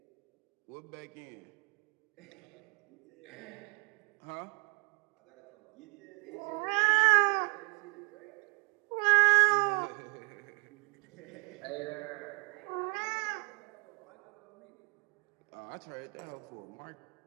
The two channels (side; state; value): left; quieter; 35.0 dB